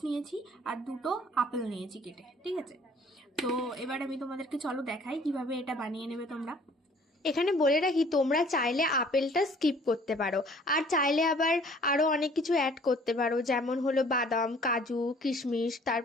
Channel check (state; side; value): normal; both; correlation 0.55